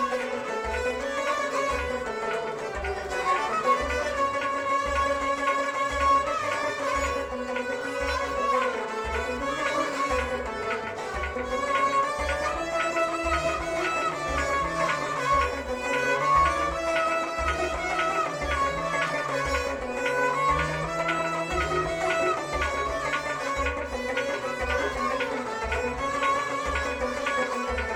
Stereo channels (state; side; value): identical; both; correlation 1.00